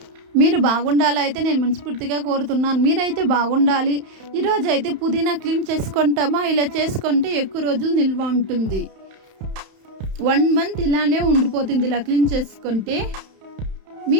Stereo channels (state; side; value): late; left; 31 ms